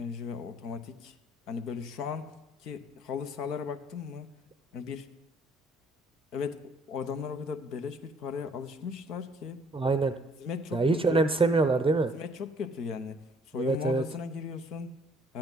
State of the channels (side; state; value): both; normal; correlation 0.61